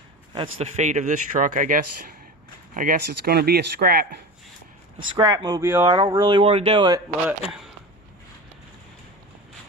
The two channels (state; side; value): normal; both; correlation 0.29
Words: that's the fate of this truck, I guess. I guess it's going to be a scrap mobile. I don't really want to do it, but